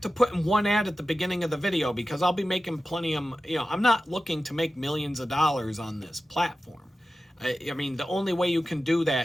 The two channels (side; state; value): both; normal; correlation 0.94